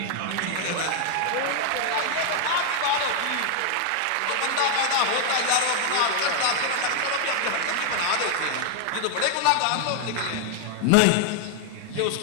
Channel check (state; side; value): different; both; correlation 0.00